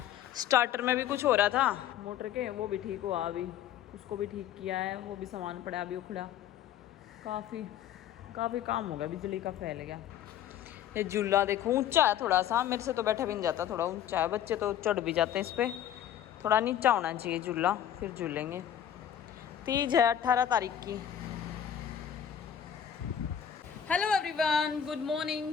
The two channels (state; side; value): quieter; right; 9.9 dB